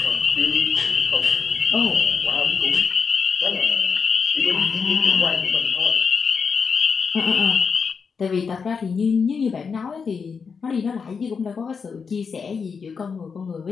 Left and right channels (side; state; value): right; quieter; 5.7 dB